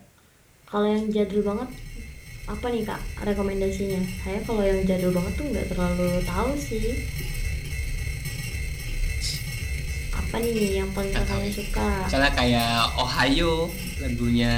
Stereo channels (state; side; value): identical; both; correlation 1.00